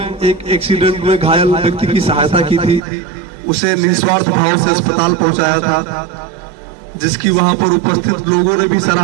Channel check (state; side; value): drops out; left; at 2.8 s